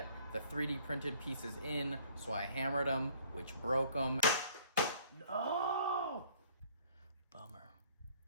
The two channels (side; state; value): both; inverted; correlation -0.57